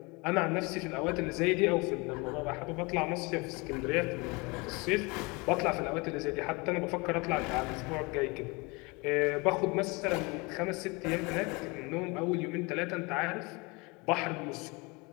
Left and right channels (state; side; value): quieter; right; 27.2 dB